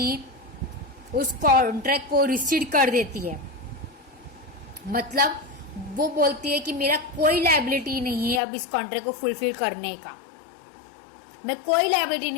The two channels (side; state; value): right; drops out; at 8.4 s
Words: उस कॉन्ट्रैक्ट को रिसीड कर देती है। मतलब वो बोलती है कि मेरा कोई लायबिलिटी नहीं है अब इस कॉन्ट्रैक्ट को फुलफिल करने का, मैं कोई लायबिलिटी